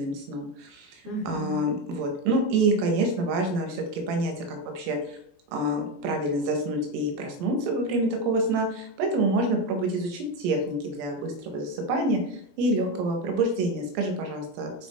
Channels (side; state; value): left; late; 17 ms